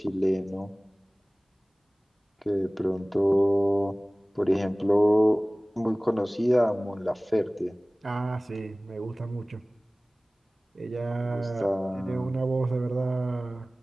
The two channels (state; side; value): normal; both; correlation 0.98